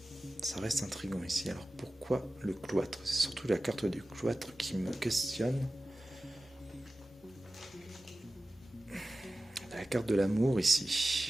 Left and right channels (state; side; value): normal; both; correlation 0.96